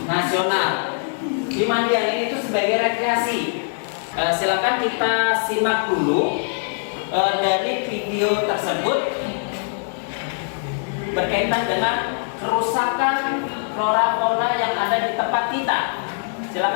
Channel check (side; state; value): right; silent; digital silence